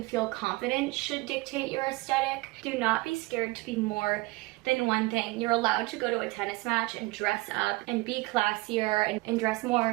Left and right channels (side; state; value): left; quieter; 22.7 dB